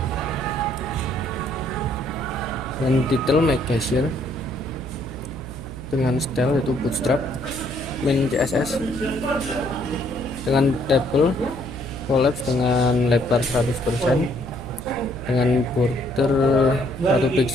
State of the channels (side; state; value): right; noise; hum, 11 dB below the sound